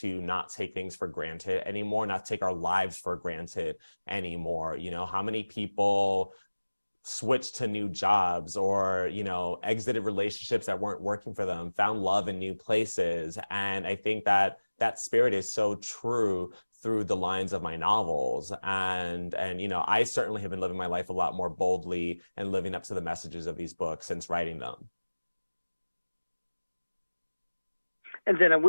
not take things for granted anymore, not take our lives for granted anymore. How many people switched to new jobs or, exited relationships that weren't working for them, found love in new places. And I think that that spirit is so true through the lines of my novels. And I certainly have been living my life a lot more boldly and living up to the messages of these books since writing them. And then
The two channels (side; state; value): both; inverted; correlation -1.00